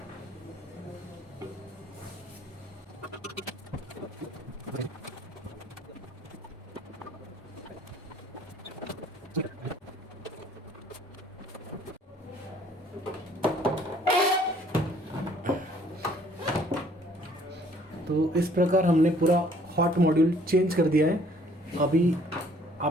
तो इस प्रकार हमने पूरा हॉट मॉड्यूल चेंज कर दिया है। अभी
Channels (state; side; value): normal; both; correlation 0.59